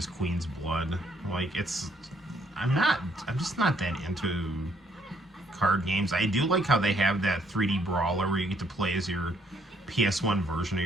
Queen's Blood. I'm just not that into card games. I do like how they have that 3D brawler where you get to play as your PS1 version of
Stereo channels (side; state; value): both; normal; correlation 0.68